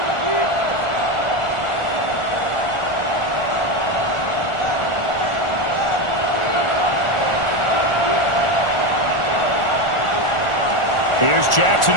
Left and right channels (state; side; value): late; right; 1.4 ms